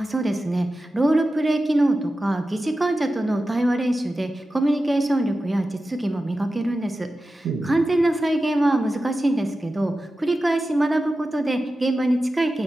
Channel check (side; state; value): both; normal; correlation 0.93